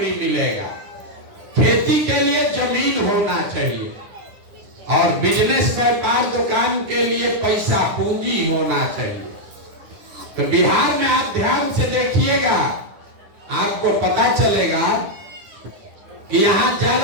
मिलेगा। खेती के लिए जमीन होना चाहिए और बिजनेस, व्यापार, दुकान के लिए पैसा, पूंजी होना चाहिए। तो बिहार में आप ध्यान से देखिएगा, आपको पता चलेगा कि यहाँ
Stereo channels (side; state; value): left; late; 10 ms